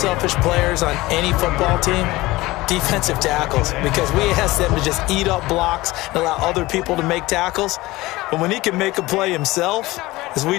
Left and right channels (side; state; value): right; quieter; 19.6 dB